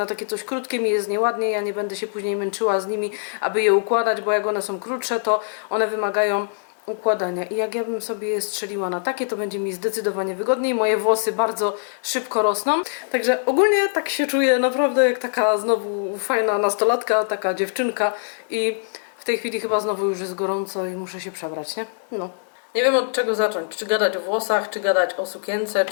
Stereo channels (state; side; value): silent; right; digital silence